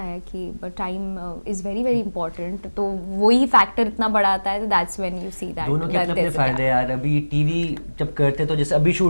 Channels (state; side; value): inverted; both; correlation -1.00